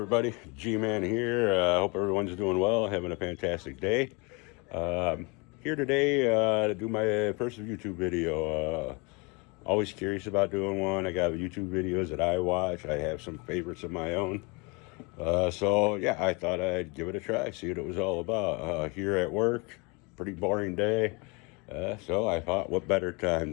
G-Man here. Hope everyone's doing well, having a fantastic day. Um, Here today to do my first YouTube video. Always curious about doing one. I got YouTube videos that I watch. I have some favorites of my own. So, yeah, I thought I'd give it a try, see what it was all about. Here at work, pretty boring day. So I thought, what better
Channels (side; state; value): right; quieter; 29.4 dB